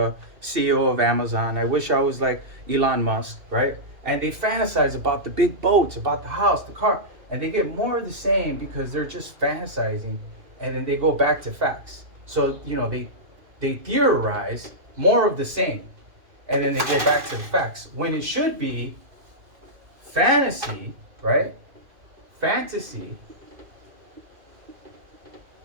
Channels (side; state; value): left; late; 2.4 ms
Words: CEO of Amazon. I wish I was like Elon Musk, right? And they fantasize about the big boats, about the house, the car, and they get more of the same because they're just fantasizing, and then they go back to facts. So, they theorize more of the same, and then they go back to the facts. When it should be fantasy, right? Fantasy,